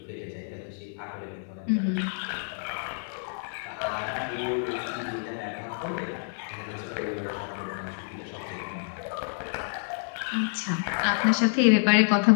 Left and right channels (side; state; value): right; silent; digital silence